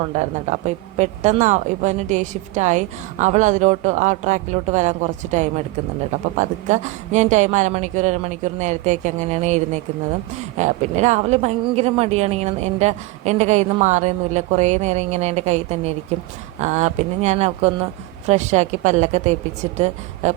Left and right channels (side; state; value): left; quieter; 19.8 dB